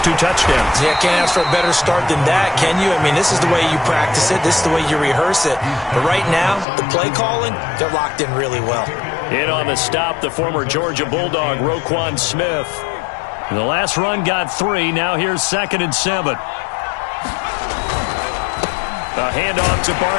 2 touchdowns. Yeah, can't ask for a better start than that, can you? I mean, this is the way you practice it. This is the way you rehearse it. But right now, the play calling, they're locked in really well. In on the stop, the former Georgia Bulldog, Roquan Smith. The last run got 3. Now here's 2nd and 7. A handoff to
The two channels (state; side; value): drops out; right; at 6.7 s